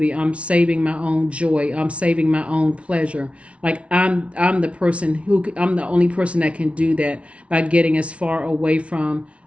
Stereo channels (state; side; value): late; left; 0.062 ms